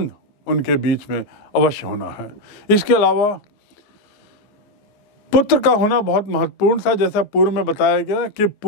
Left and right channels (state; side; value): late; right; 14 ms